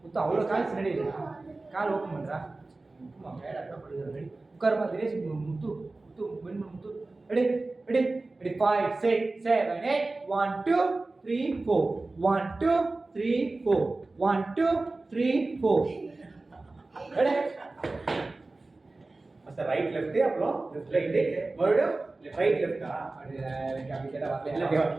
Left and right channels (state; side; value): quieter; left; 3.2 dB